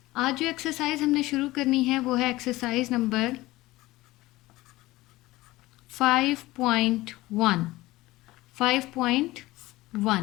आज जो exercise हमने शुरू करनी है वो है exercise number 5.1.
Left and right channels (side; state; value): right; quieter; 18.7 dB